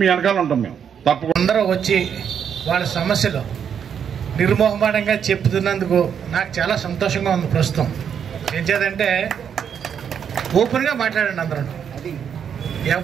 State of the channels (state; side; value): quieter; left; 7.9 dB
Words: వెనకాల ఉంటాం. మేము తప్పకుండా అందరూ వచ్చి వాళ్ళ సమస్యలు నిర్మోహమాటంగా చెప్తున్నందుకు నాకు చాలా సంతోషంగా ఉంది. ప్రస్తుతం ఏం చేద్దంటే ఓపెన్గా మాట్లాడండి అందరూ.